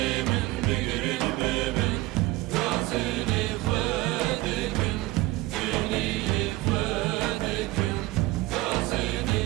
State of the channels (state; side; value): quieter; left; 19.2 dB